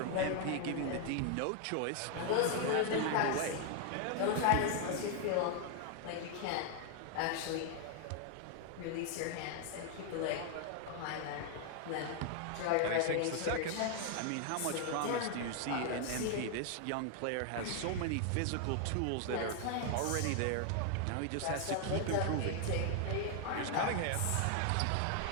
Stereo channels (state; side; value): different; both; correlation 0.00